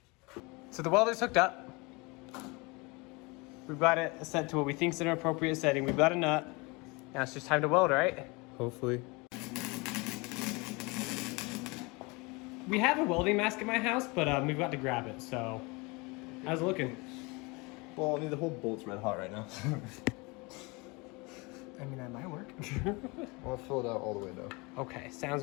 So the welder's hooked up. We've got it set to what we think is an appropriate setting. We've got a nut. Now it's just time to weld, right? Hopefully. We have a welding mask at my house, but we've got to grab it, so how's it looking? Well, I mean, the whole bolt's red hot right now. I mean, that might work. I'll fill it out all the way though. Okay, sounds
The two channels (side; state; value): right; quieter; 26.8 dB